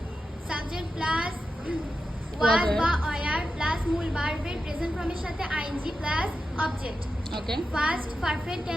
ওয়াজ বা ওয়ার প্লাস মূল ভার্বের প্রেজেন্ট ফর্মের সাথে আইএনজি প্লাস অবজেক্ট। ওকে। ফার্স্ট পারফেক্ট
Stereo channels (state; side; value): normal; both; correlation 0.90